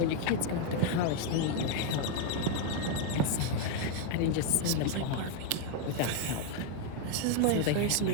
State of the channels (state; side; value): different; both; correlation 0.01